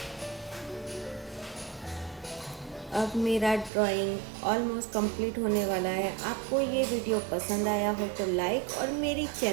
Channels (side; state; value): left; drops out; at 3.7 s